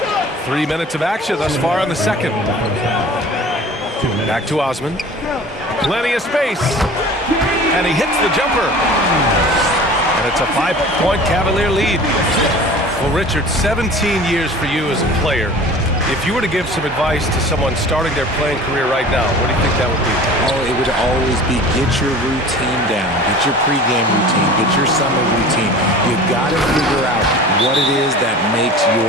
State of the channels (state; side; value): normal; both; correlation 0.41